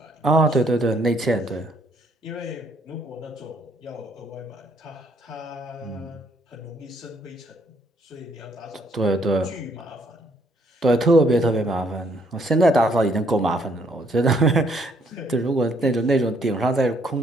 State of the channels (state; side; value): normal; both; correlation 0.68